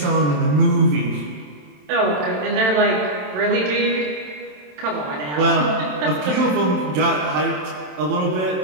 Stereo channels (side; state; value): left; late; 27 ms